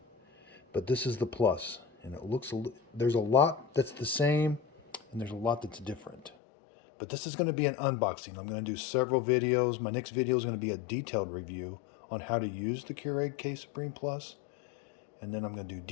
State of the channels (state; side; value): drops out; right; at 6.3 s